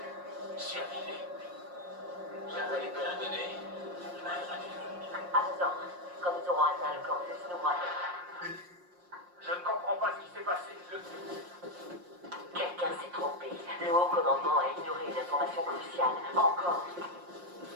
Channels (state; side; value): late; left; 5.6 ms